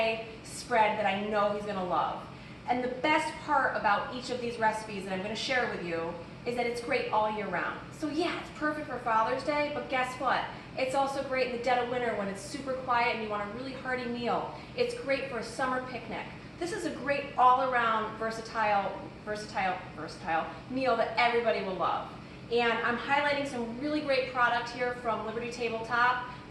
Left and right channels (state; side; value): identical; both; correlation 1.00